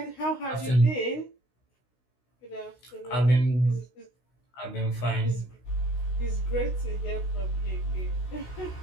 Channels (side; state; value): right; late; 16 ms